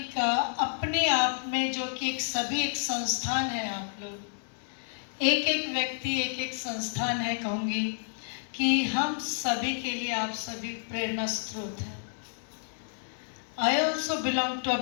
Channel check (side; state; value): right; silent; 58 dB below the other